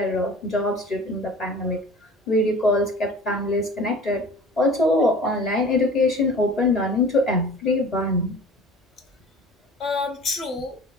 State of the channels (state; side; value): normal; both; correlation 0.43